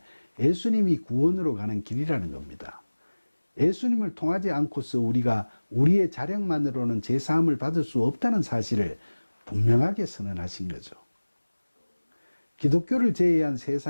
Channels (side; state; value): both; inverted; correlation -1.00